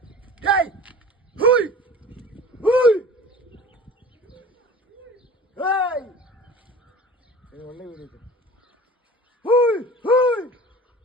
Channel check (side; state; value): both; normal; correlation 0.41